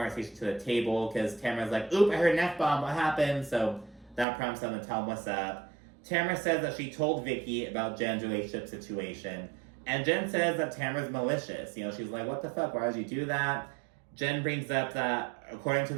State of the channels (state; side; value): drops out; left; at 4.2 s